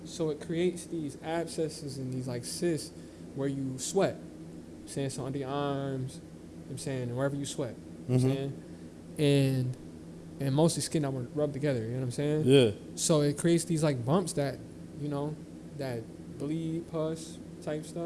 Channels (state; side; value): identical; both; correlation 1.00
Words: So it creates these abscesses and these like cysts where you sweat. I'm saying so under your arms, I'm saying, and wherever you sweat. I'm saying. And mostly skin that were rubbed together, you know what I'm saying? Yeah. So it creates these like bumps that, you know, that bleed, pus type